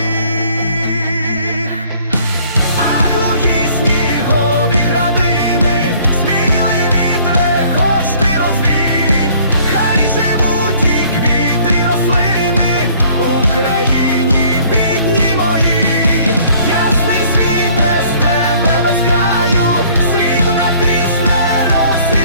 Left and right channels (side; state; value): both; inverted; correlation -0.57